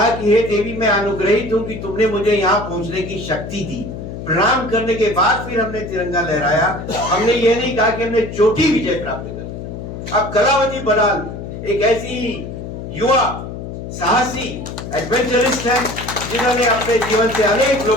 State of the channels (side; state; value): left; noise; hum, 9 dB below the sound